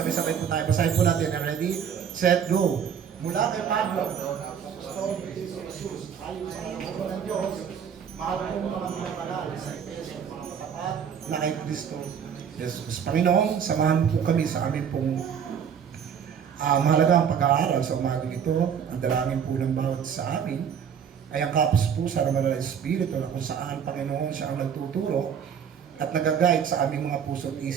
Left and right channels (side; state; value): left; quieter; 7.8 dB